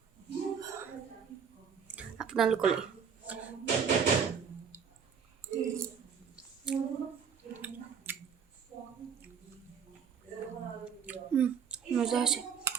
আপোনালোকলৈ। মজা আছে।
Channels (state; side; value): quieter; left; 7.0 dB